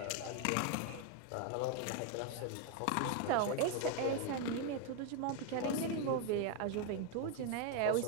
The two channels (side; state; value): both; different; correlation 0.01